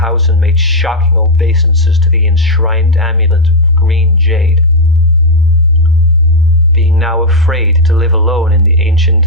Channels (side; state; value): both; normal; correlation 0.00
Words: and made shocking obeisances to the enshrined amulet of green jade. Being now afraid to live alone in the ancient